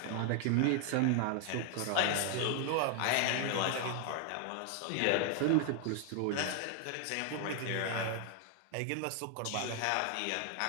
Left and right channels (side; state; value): both; different; correlation 0.00